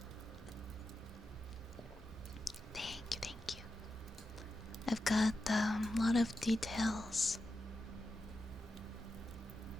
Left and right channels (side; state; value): both; normal; correlation 0.90